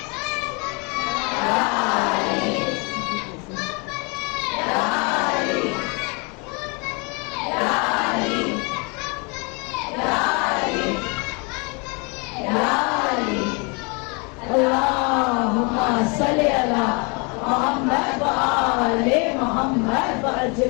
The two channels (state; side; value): quieter; right; 31.8 dB